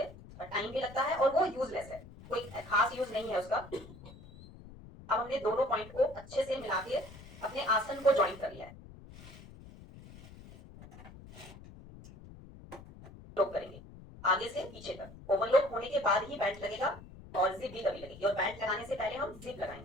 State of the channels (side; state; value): left; noise; rumble, 17 dB below the sound